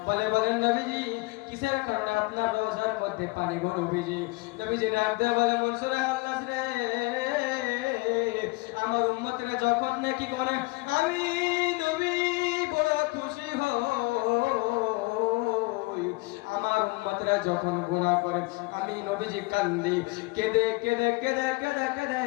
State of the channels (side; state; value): right; quieter; 25.7 dB